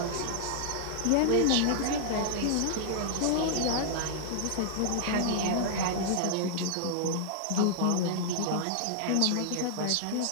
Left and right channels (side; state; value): both; different; correlation -0.01